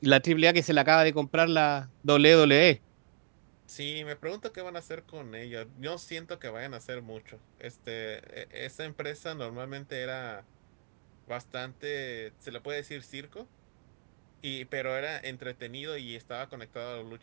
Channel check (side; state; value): left; silent; digital silence